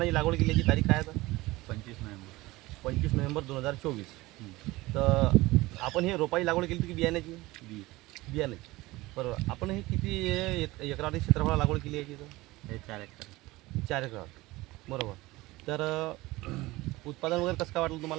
लागवड केल्याची तारीख काय आहे? 25 नोव्हेंबर 2024। तर आपण हे रोपाची लागवड केली की बियाण्याची? बियाण्याची, बरोबर। आपण हे किती एकरावरती क्षेत्रफळाला लागवड केली आहे? हे 4 एकर, बरोबर। तर उत्पादन वगैरे कसं काय वाटलं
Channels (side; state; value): left; quieter; 20.0 dB